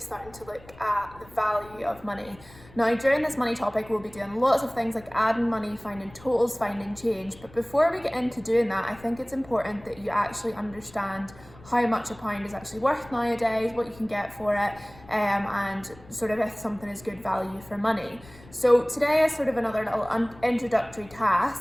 to look at the value of money. Now during this money topic we'll be doing lots of things like adding money, finding totals, finding change, but before we get into doing that I think it's important that you actually understand how much a pound is actually worth nowadays, what you can get for it, and sort of if something is good value for money. So today is sort of another little introductory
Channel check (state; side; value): noise; left; rumble, 22 dB below the sound